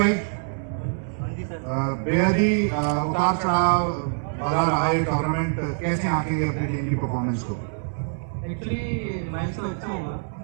बेहद ही उतार चढ़ाव भरा रहा है टूर्नामेंट, कैसे आंकेंगे अपनी टीम की परफॉर्मेंस को? एक्चुअली मैच तो अच्छा हुआ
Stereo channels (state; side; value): silent; left; 62 dB below the other